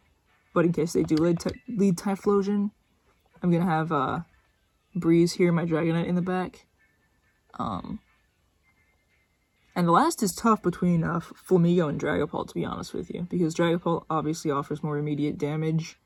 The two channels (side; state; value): both; identical; correlation 1.00